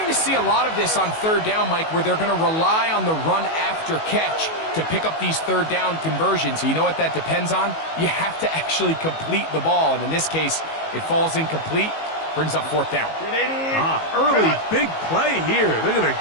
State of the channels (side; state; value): right; late; 19 ms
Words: to see a lot of this on third down, Mike, where they're going to rely on the run after catch to pick up these third down conversions. So you know what that depends on? You have to actually complete the ball. And in this case, it falls incomplete, brings up fourth down. Early big play here. They're going to